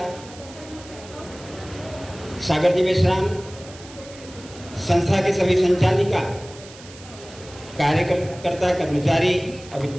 सागर जी मेश्राम, संस्था के सभी संचालिका, कार्यकर्ता, कर्मचारी,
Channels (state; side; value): noise; right; hiss, 19 dB below the sound